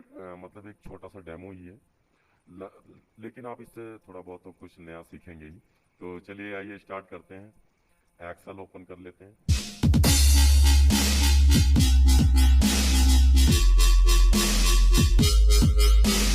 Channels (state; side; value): identical; both; correlation 1.00